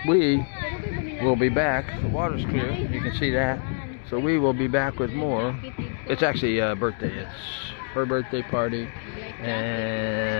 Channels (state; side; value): silent; right; 58 dB below the other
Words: we will be back. The water's clear, you can see that. So we will be back with more. It's actually a birthday. It's her birthday party,